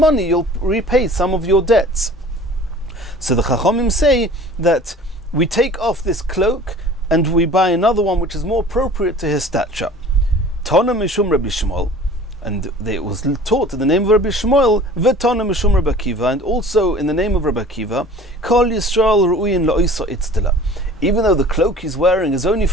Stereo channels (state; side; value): normal; both; correlation 0.45